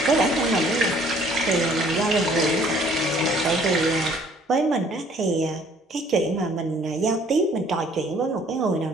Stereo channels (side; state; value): both; normal; correlation 0.58